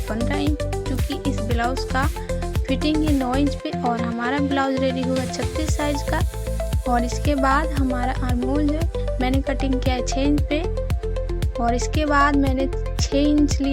15 इंच, क्योंकि इस ब्लाउज़ का फिटिंग है 9 इंच पे और हमारा ब्लाउज रेडी होगा 36 साइज का। और इसके बाद हमारा आर्म होल जो मैंने कटिंग किया है 6 इंच पे, और इसके बाद मैंने 6 इंच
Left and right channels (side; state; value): both; identical; correlation 1.00